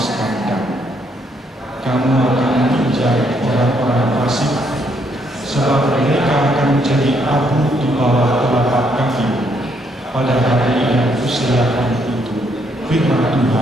kandang. Kamu akan menginjak orang-orang fasik, sebab mereka akan menjadi abu di bawah telapak kakimu pada hari yang kusediakan itu, firman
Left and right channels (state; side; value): normal; both; correlation 0.72